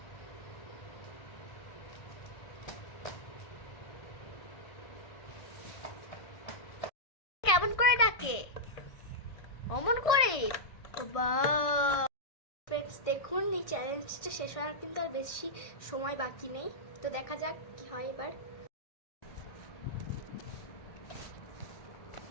কেমন করে ডাকে, অমন করে। ফ্রেন্ডস, দেখুন এই চ্যালেঞ্জটা শেষ হওয়ার কিন্তু আর বেশি সময় বাকি নেই। তো দেখা যাক কি হয় এবার।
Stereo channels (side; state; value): right; late; 1.6 ms